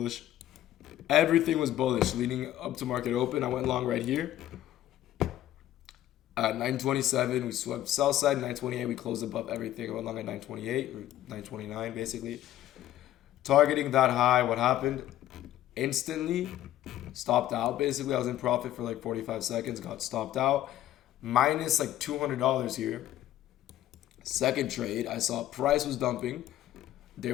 Everything was bullish leading up to market open. I went long right here. At 927, we swept sell side. 928, we closed above everything. I went long at 928 or 929, basically. Targeting that high, what happened? Instantly stopped out. Basically, I was in profit for like 45 seconds. Got stopped out. Minus like $200 here. Second trade, I saw price was dumping. There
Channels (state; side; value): quieter; right; 13.3 dB